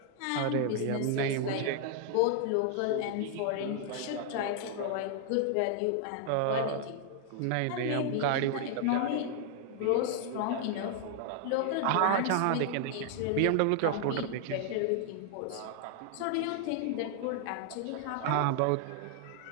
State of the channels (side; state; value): both; different; correlation 0.00